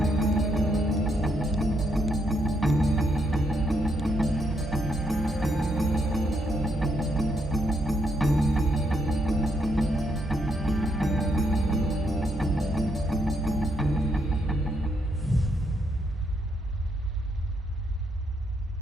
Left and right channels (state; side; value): normal; both; correlation 0.76